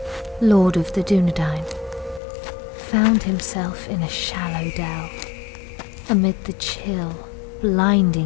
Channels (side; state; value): right; drops out; at 2.2 s